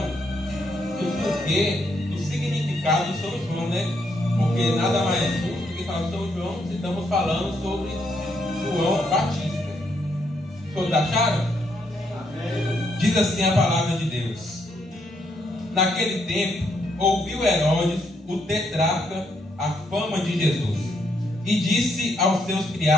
do porquê, do significado de São João, né? Porque nada mais justo do que falar de São João se estamos falando sobre João Batista. Todos acharam? Amém. Diz assim a palavra de Deus. Naquele tempo, ouviu Herodes, o tetrarca, a fama de Jesus, e disse aos seus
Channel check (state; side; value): normal; both; correlation 0.75